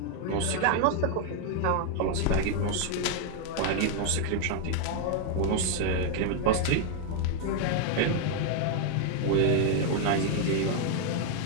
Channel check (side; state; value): both; different; correlation 0.01